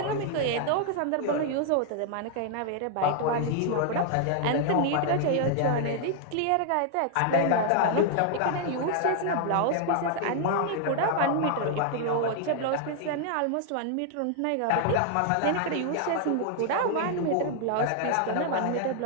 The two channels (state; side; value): different; both; correlation 0.00